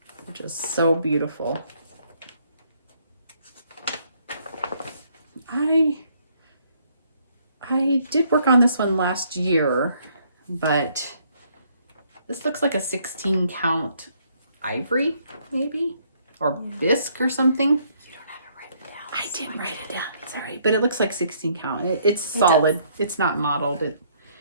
which is so beautiful. I did work on this one last year, but this looks like a 16 count ivory, maybe, or bisque or something. You don't have to write it down. I didn't write it down. It's all right, but it looks like 16 count. It's solid. It's not modeled.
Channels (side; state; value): both; inverted; correlation -0.67